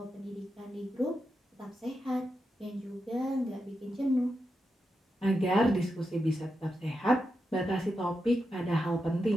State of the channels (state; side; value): normal; both; correlation 0.87